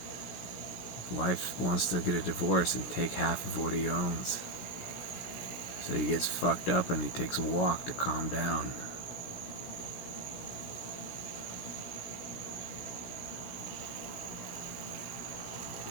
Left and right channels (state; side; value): late; right; 16 ms